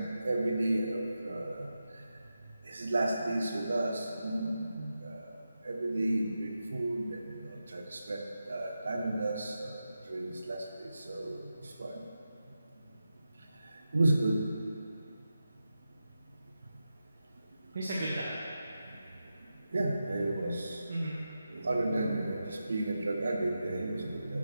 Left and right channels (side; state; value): both; inverted; correlation -0.90